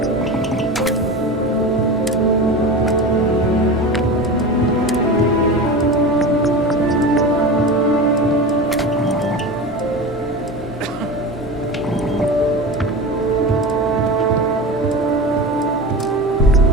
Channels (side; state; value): both; normal; correlation 0.28